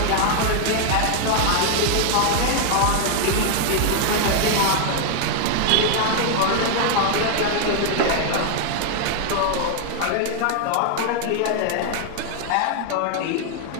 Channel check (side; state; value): both; different; correlation 0.00